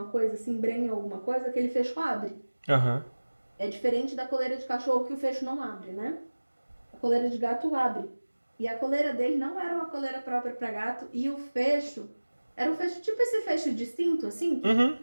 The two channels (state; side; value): inverted; both; correlation -1.00